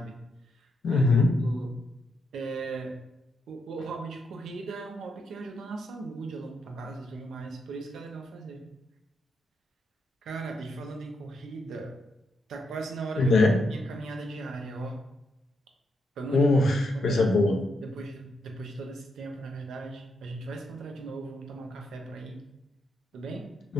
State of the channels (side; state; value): both; normal; correlation 0.80